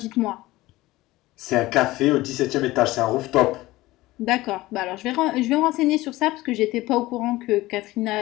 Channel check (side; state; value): right; quieter; 18.4 dB